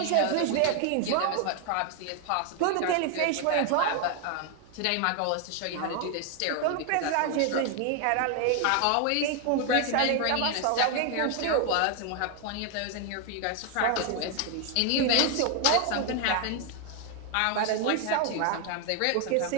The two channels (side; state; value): both; different; correlation 0.01